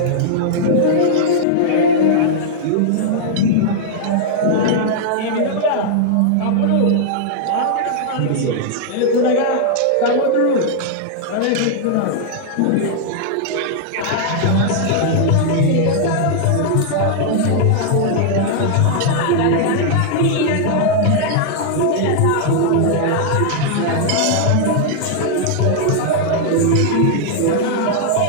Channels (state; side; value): different; both; correlation -0.01